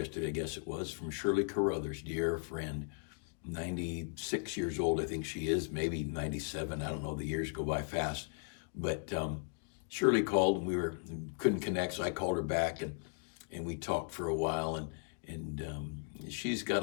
I guess it was, from Shirley Carruthers, dear friend, 96 years old, I think she is, maybe 97. I don't know. The years go by fast. But Shirley called and we couldn't connect, so I called her back and we talked for a while. And she's got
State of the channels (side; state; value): right; silent; 53 dB below the other